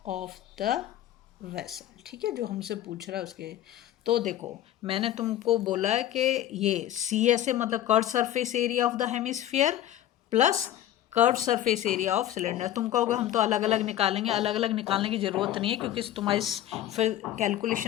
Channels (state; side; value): quieter; right; 12.5 dB